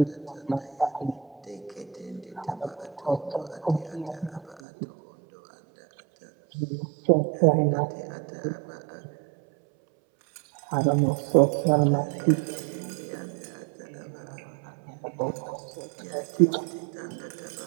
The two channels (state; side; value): drops out; left; at 4.6 s